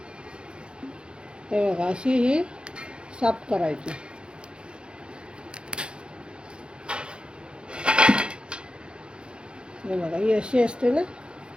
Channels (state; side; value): late; left; 0.053 ms